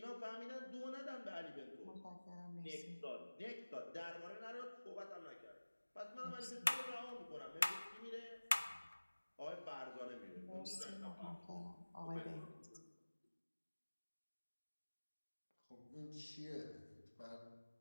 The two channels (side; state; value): both; inverted; correlation -1.00